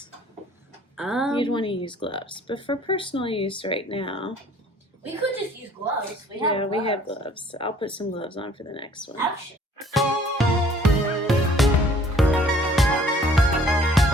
you'd want to use gloves. But for personal use right now, we could just use gloves. We have gloves. I'll put some gloves on for the next one. Ouch.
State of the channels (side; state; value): both; normal; correlation 0.56